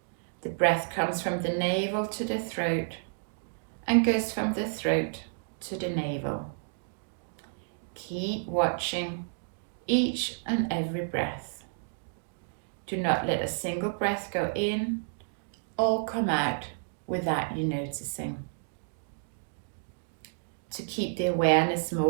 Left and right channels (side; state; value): left; silent; digital silence